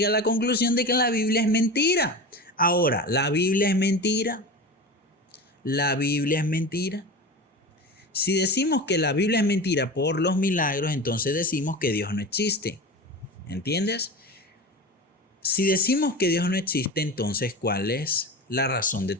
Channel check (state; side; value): normal; both; correlation 0.29